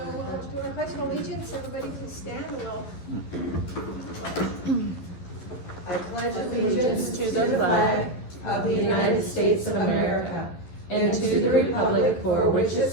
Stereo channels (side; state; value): right; late; 11 ms